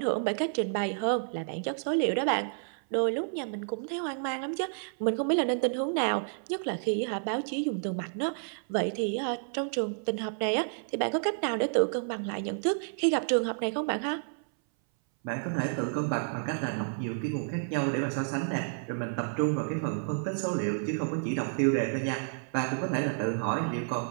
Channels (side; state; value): left; silent; 58 dB below the other